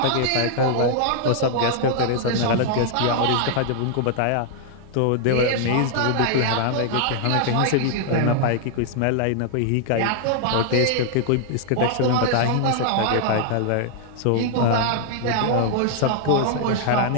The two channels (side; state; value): both; different; correlation 0.00